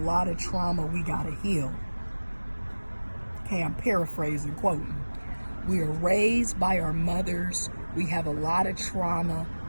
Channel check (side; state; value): both; inverted; correlation -1.00